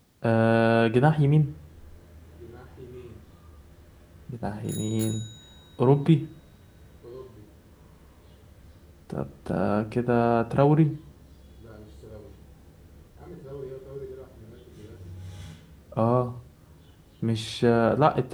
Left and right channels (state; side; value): identical; both; correlation 1.00